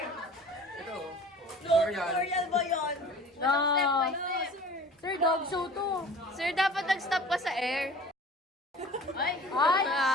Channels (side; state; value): both; normal; correlation 0.43